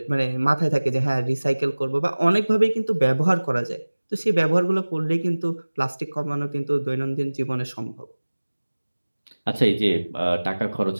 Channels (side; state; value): both; inverted; correlation -1.00